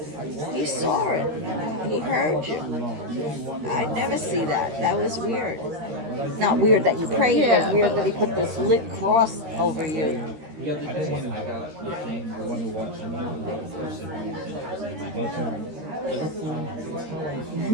He saw it. He heard you. I'd never see that. That was weird. Not weird that you prayed, but weird that he put this lit cross over you.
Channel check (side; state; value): left; late; 13 ms